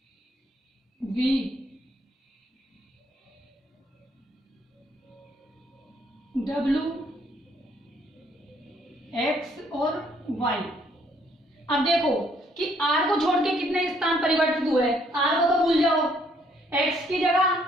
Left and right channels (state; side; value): normal; both; correlation 0.67